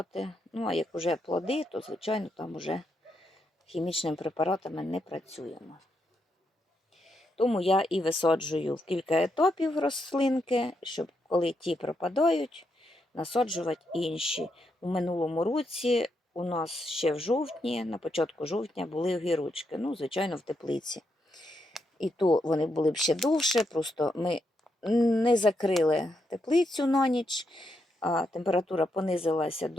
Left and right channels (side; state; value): both; normal; correlation 0.81